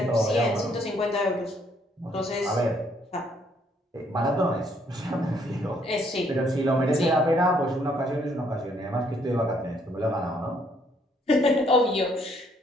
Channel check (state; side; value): normal; both; correlation 0.68